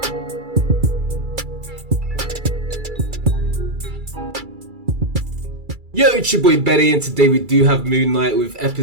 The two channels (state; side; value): late; left; 2.3 ms